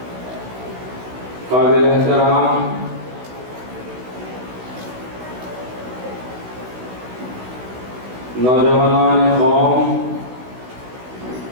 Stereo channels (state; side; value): late; left; 16 ms